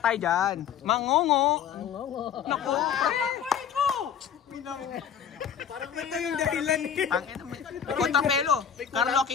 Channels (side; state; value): right; quieter; 8.4 dB